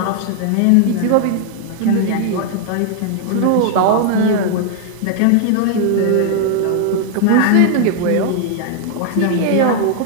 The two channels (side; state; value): both; different; correlation 0.00